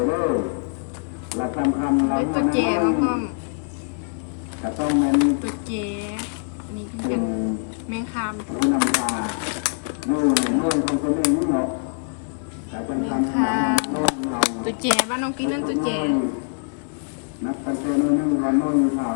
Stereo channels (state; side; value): silent; right; digital silence